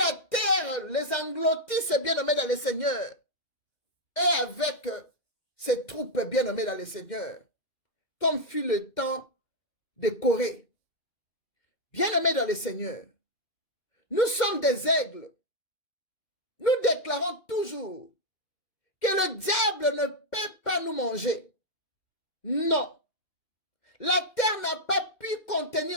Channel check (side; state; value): right; late; 2.1 ms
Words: terre les engloutisse, bien-aimés dans le Seigneur. Et avec ses troupes bien-aimées dans le Seigneur. Comme fut le temps de Corée. Bien-aimés dans le Seigneur. Nous sommes des aigles. Nous déclarons toujours que le diable ne peut pas nous manger. Non. La terre n'a pas pu